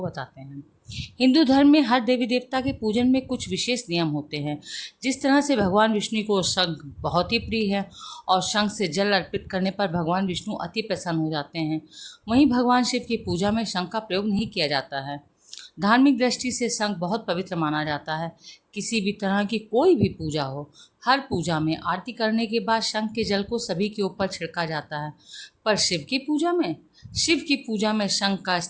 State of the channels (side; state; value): both; identical; correlation 1.00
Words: बताते हैं। हिंदू धर्म में हर देवी देवता के पूजन में कुछ विशेष नियम होते हैं। जिस तरह से भगवान विष्णु को शंख बहुत ही प्रिय है और शंख से जल अर्पित करने पर भगवान विष्णु अति प्रसन्न हो जाते हैं, वहीं भगवान शिव की पूजा में शंख का प्रयोग नहीं किया जाता है। धार्मिक दृष्टि से शंख बहुत पवित्र माना जाता है। किसी भी तरह की कोई भी पूजा हो, हर पूजा में आरती करने के बाद शंख के जल को सभी के ऊपर छिड़का जाता है। पर शिव की पूजा में शंख का